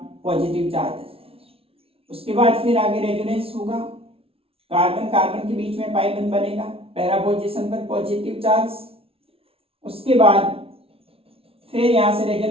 पॉजिटिव चार्ज है। उसके बाद फिर आगे रेजोनेंस होगा, कार्बन कार्बन के बीच में पाई बंद बनेगा, पैरा पोजीशन पर पॉजिटिव चार्ज। उसके बाद फिर यहाँ से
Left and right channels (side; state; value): left; late; 0.27 ms